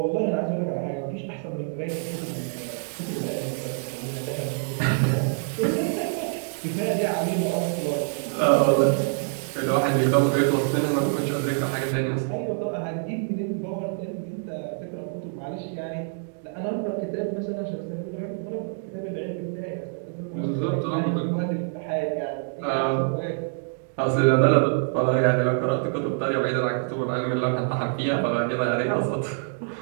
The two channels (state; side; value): silent; left; 60 dB below the other